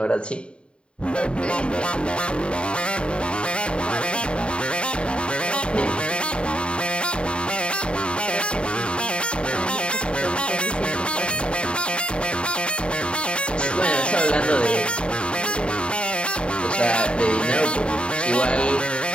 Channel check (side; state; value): right; late; 0.055 ms